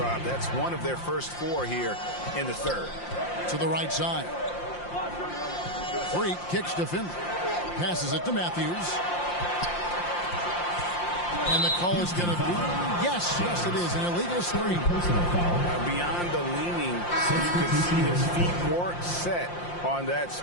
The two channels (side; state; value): right; late; 5.7 ms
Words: That's one of their first 4 here in the third. To the right side. Freak kicks to Finley. Passes it to Matthews. And the call is going to be, yes, it is, an illegal screen. Beyond the leaning, you could see his feet weren't set on that